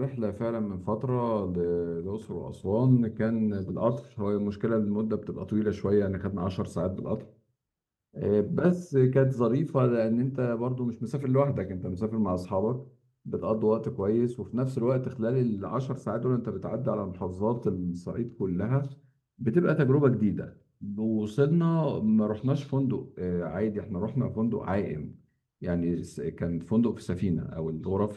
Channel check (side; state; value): both; identical; correlation 1.00